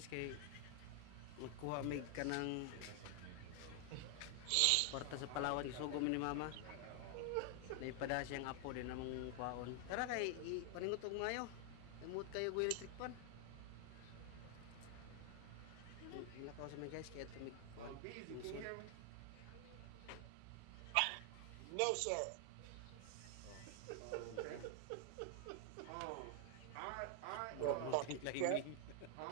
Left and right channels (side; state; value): both; different; correlation 0.00